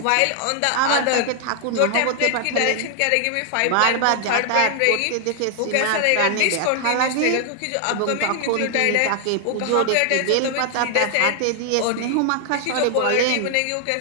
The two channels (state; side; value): different; both; correlation 0.00